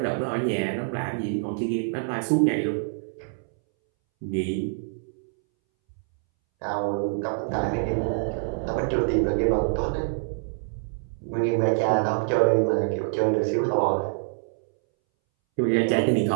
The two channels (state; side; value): silent; left; 61 dB below the other